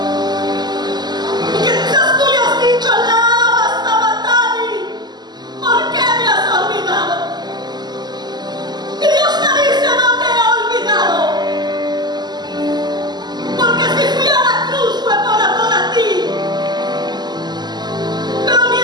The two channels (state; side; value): late; left; 0.21 ms